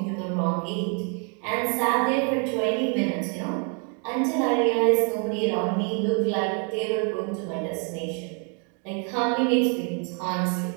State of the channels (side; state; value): left; quieter; 38.7 dB